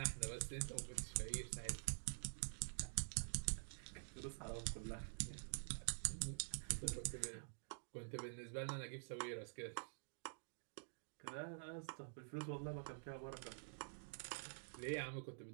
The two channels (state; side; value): silent; left; digital silence